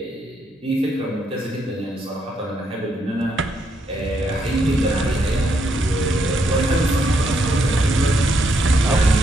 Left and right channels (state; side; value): normal; both; correlation 0.76